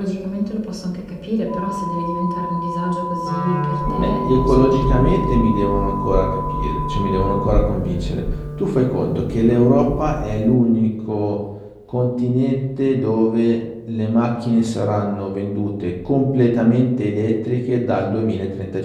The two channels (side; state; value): both; identical; correlation 1.00